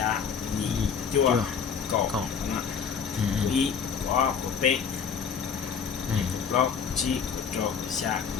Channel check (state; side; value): quieter; right; 6.8 dB